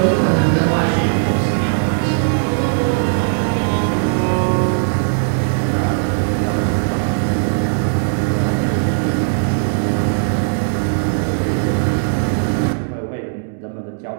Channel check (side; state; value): left; silent; digital silence